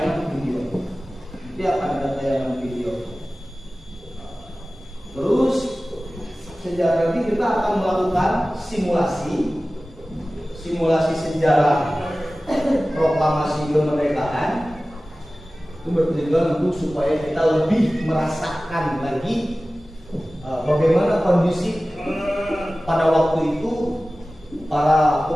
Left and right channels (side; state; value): both; normal; correlation 0.97